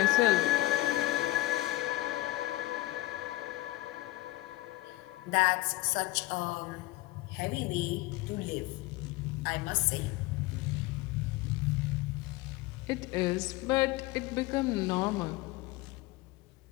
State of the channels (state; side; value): quieter; right; 18.6 dB